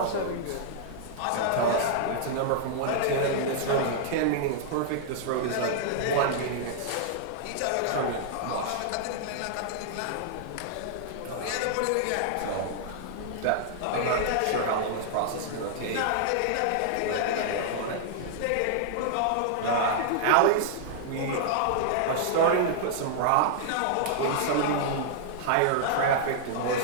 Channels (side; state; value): both; different; correlation -0.01